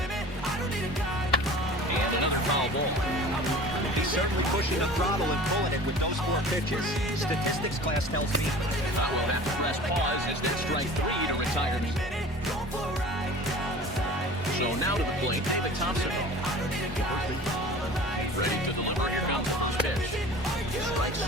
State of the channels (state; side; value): normal; both; correlation 0.41